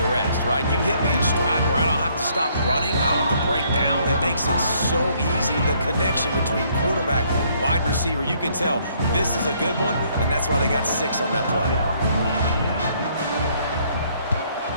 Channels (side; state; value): both; inverted; correlation -0.66